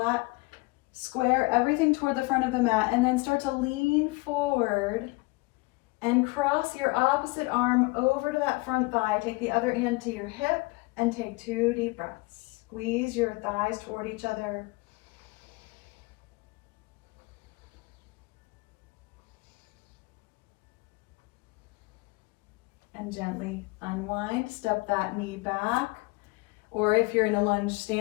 Square everything toward the front of the mat and then start to lean forward and cross your opposite arm over to that front thigh. Take the other hand to your hip and take 2 deep breaths. Squeeze your thighs toward each other. And gently unwind, step that knee back. Or if you're in a lunge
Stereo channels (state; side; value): quieter; right; 24.8 dB